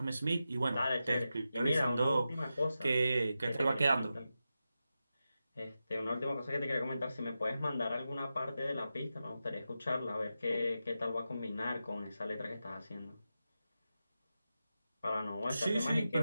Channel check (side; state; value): both; inverted; correlation -0.91